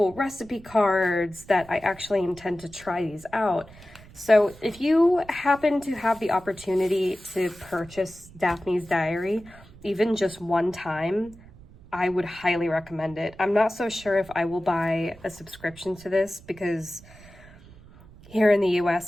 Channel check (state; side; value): noise; right; rumble, 22 dB below the sound